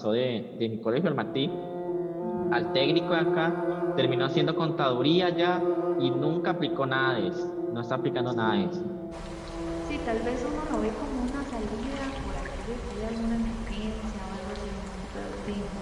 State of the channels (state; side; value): identical; both; correlation 1.00